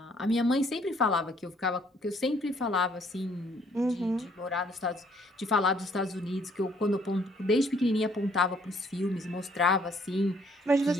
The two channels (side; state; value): both; normal; correlation 0.64